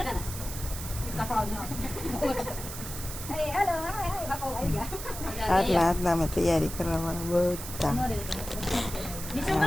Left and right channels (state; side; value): noise; right; hiss, 9 dB below the sound